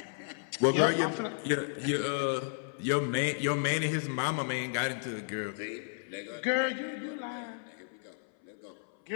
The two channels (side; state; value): right; silent; 56 dB below the other